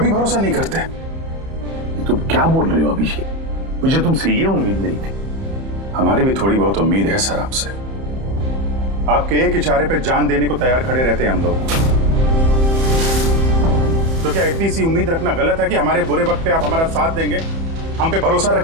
भरोसा नहीं करते। ये तुम क्या बोल रहे हो अभिजीत? मुझे तुमसे ये उम्मीद नहीं थी। हमारी भी थोड़ी बहुत उम्मीद है सर आपसे। आपके एक इशारे पे जान देने को तैयार खड़े रहते हैं हम लोग। तो क्या इतनी सी उम्मीद रखना गलत है कि हमारे बुरे वक्त पे आप हमारा साथ देंगे, हम पे भरोसा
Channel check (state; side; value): late; left; 30 ms